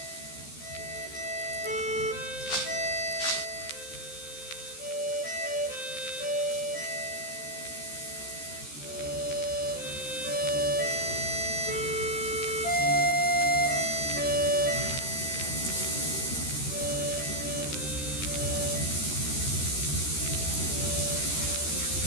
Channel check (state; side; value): late; right; 13 ms